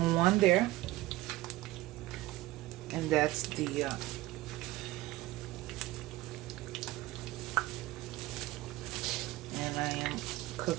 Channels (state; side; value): quieter; left; 17.9 dB